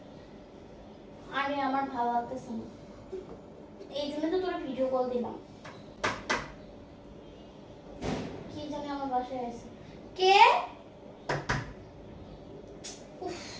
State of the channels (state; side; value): identical; both; correlation 1.00